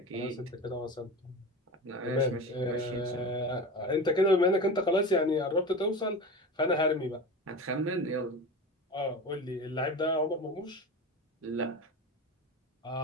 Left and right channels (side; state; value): both; normal; correlation 0.29